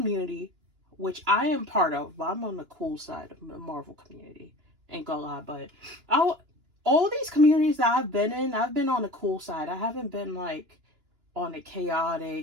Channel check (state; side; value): late; left; 2.9 ms